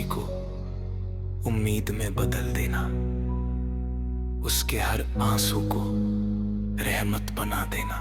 को उम्मीद में बदल देना, उसके हर आंसू को रहमत बना देना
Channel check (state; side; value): identical; both; correlation 1.00